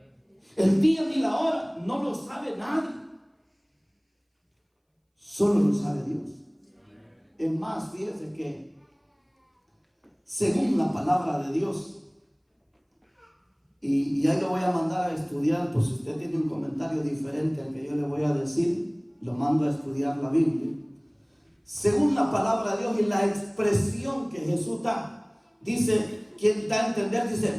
El día ni la hora no lo sabe nadie. Solo lo sabe Dios. Es más, fíjese que según la palabra de Dios, y ahí lo voy a mandar a estudiar, pues si usted tiene un comentario diferente al que yo le voy a decir, lo mando a estudiar la Biblia. Según la palabra de Dios y la expresión que Jesús da, dice, quien da a entender, dice:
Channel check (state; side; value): identical; both; correlation 1.00